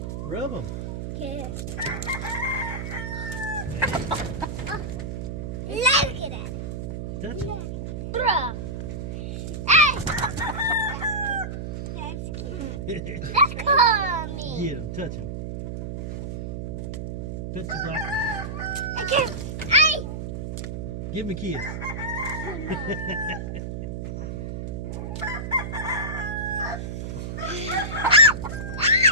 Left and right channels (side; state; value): right; noise; hum, 5 dB below the sound